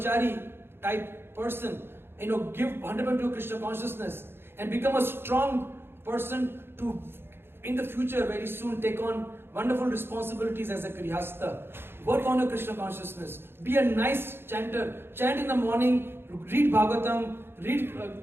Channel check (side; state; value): left; late; 0.11 ms